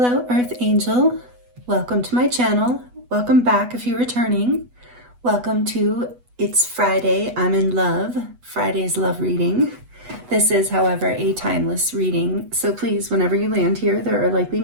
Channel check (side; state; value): left; late; 8.1 ms